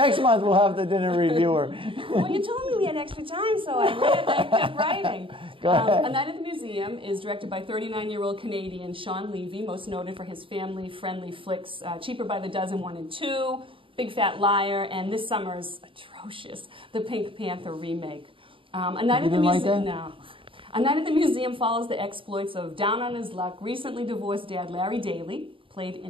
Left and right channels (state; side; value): late; left; 0.25 ms